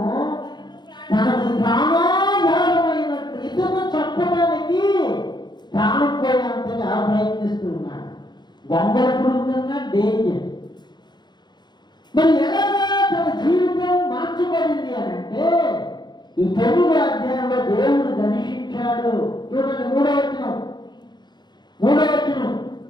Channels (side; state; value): right; late; 0.21 ms